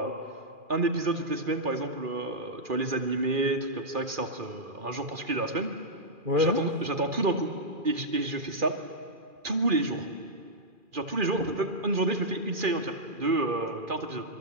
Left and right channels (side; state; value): left; late; 2.4 ms